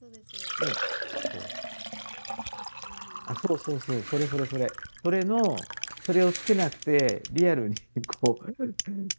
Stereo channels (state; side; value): inverted; both; correlation -1.00